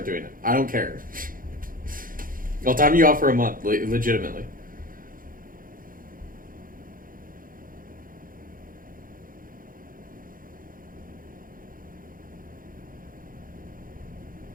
doing it. I don't care. I'll time you out for a month, legitimately.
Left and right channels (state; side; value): late; left; 0.40 ms